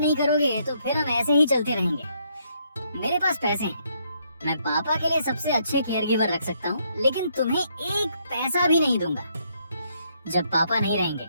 करोगे तो फिर हम ऐसे ही चलते रहेंगे। मेरे पास पैसे हैं, मैं पापा के लिए सबसे अच्छे केयर गिवर रख सकता हूँ, लेकिन तुम्हें एक पैसा भी नहीं दूंगा। जब पापा नहीं रहेंगे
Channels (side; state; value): both; inverted; correlation -0.72